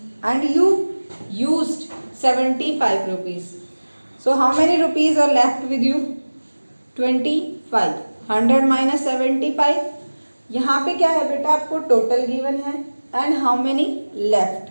and you used 75 rupees. So how many rupees are left with you? 25. 100 minus 75. यहाँ पे क्या है बेटा, आपको टोटल गिवन है and how many left,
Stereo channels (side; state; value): both; inverted; correlation -1.00